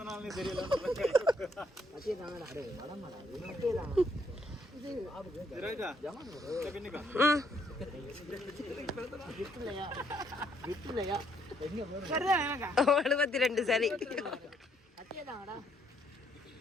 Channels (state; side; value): normal; both; correlation 0.70